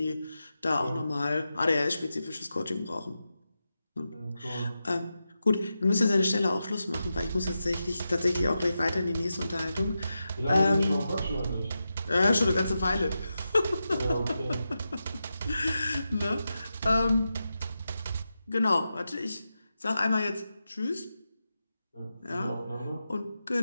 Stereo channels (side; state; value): both; inverted; correlation -0.90